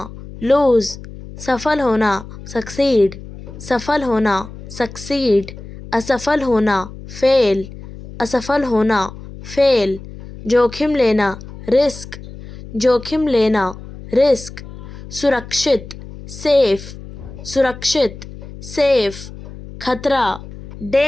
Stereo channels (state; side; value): noise; left; hum, 15 dB below the sound